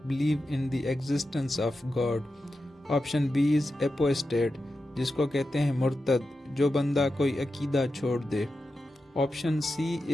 believe in the existence of God. Option B is apostate, جس کو کہتے ہیں مرتد، جو بندہ کوئی عقیدہ چھوڑ دے. Option C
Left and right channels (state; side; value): normal; both; correlation 0.91